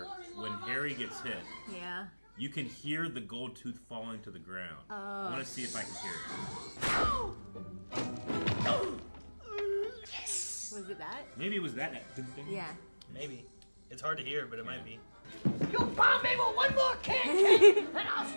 when Harry gets hit. Yeah. You can hear the gold tooth falling to the ground. I want to see if I can hear it. Was it that? Maybe it was that. Yeah. Maybe. It's hard to hear, but it might be. You bomb me with one more can, and I'll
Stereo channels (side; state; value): both; inverted; correlation -1.00